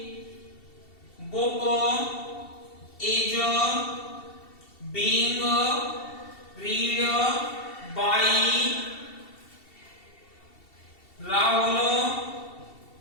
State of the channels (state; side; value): late; right; 2.7 ms